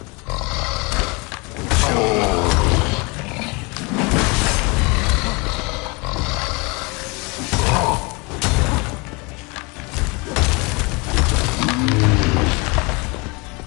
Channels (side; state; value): right; quieter; 28.3 dB